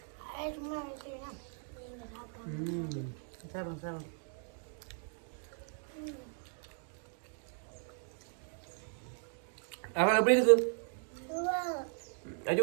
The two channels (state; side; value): silent; left; 53 dB below the other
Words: அவன் எப்படி இருக்கு?